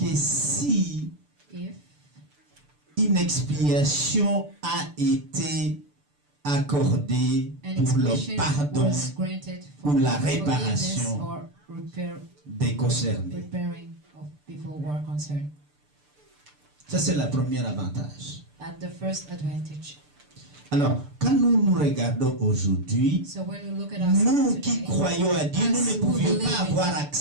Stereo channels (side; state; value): left; late; 6.8 ms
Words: si if une expiation a été accordée an pour le expiation pardon was granted for ou la forgiveness réparation or des concernés. repairing of people who are concerned. Ça, c'est le premier avantage. At the first advantage. Alors, quand nous regardons aujourd'hui, So when we look at nous ourselves qui today, croyons à Dieu, nous as ne who pouvions believe pas in avoir God,